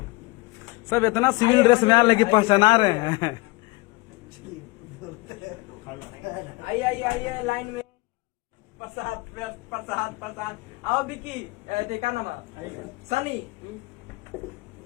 सब इतना सिविल ड्रेस में आ लगी पहचाना रहे हैं। आइए आइए आइए लाइन में। प्रसाद प्रसाद प्रसाद। आओ विकी, देखा नाम सनी।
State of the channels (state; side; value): quieter; right; 23.5 dB